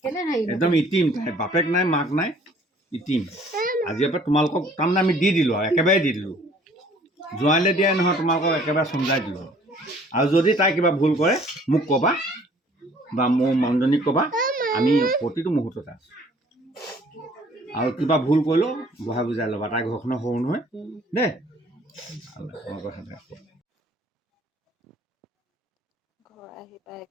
একদম ইটিম বাপেক নাই মাক নাই ইটিম আজিৰ পৰা তোমালোকক তাৰমানে আমি দি দিলোঁ আৰু একেবাৰে দি দিলোঁ জোৱাইলৈ দিয়াই নহয় তোমালোকক একেবাৰে চমজাই দিলোঁ আৰু যদি তাই কিবা ভুল কৰে মোক ক'বা বা মোৰ মানুহজনীক ক'বা আমি প্ৰতিটো মুহূৰ্ততে আছোঁ আৰু কিবা ভুল কৰিলেও বহাই বুজাই ল'বা তাই ঘৰখনৰ সৰু নহয় দেই ঘৰ আহি পাই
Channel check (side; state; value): both; normal; correlation 0.56